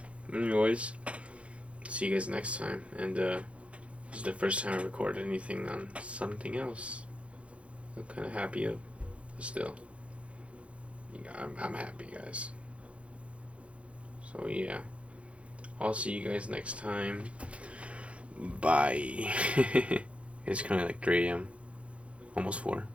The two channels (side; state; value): left; late; 0.062 ms